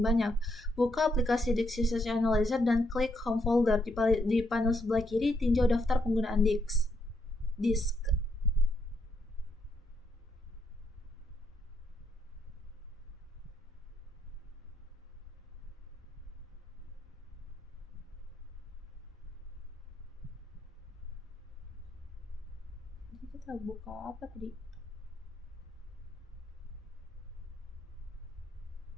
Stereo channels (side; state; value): both; normal; correlation 0.76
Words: banyak. Buka aplikasi Disk Usage Analyzer dan klik Home Folder. Di panel sebelah kiri, tinjau daftar penggunaan disk. Kita buka apa tadi?